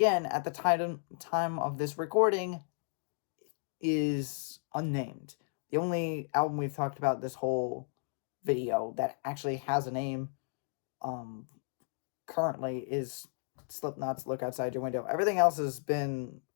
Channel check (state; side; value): silent; right; digital silence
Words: at the time of this recording, is unnamed. The only album we've talked about this whole video that actually has a name currently is Slipknot's Look Outside Your Window. Everything else is